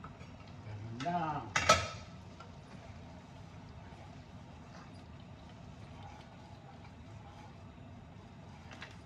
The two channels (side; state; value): both; identical; correlation 1.00